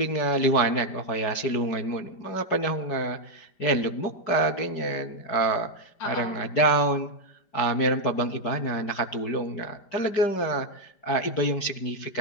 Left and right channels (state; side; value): late; right; 5.0 ms